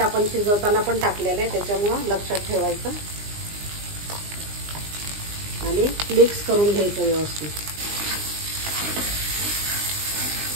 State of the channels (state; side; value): late; left; 20 ms